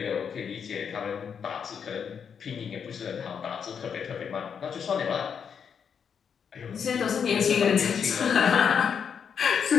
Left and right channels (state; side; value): quieter; right; 7.1 dB